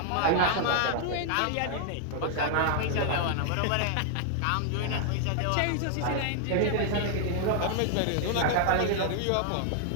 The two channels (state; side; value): different; both; correlation 0.00